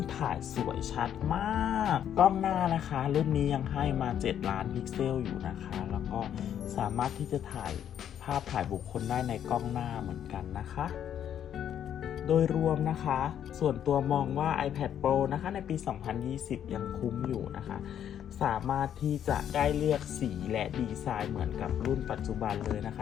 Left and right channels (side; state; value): right; quieter; 9.7 dB